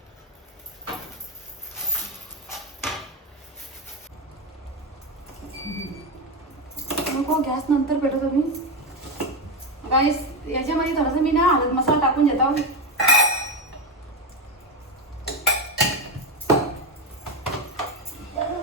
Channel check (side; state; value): both; normal; correlation 0.12